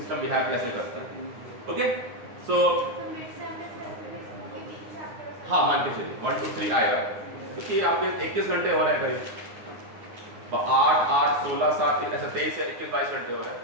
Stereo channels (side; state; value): left; late; 9.4 ms